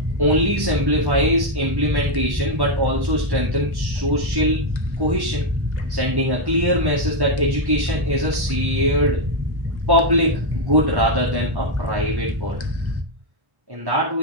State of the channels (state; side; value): late; left; 1.1 ms